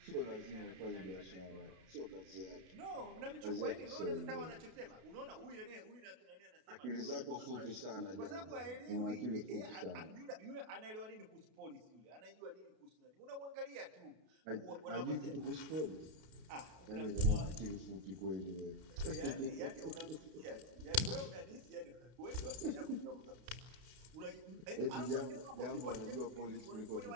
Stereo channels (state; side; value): late; left; 32 ms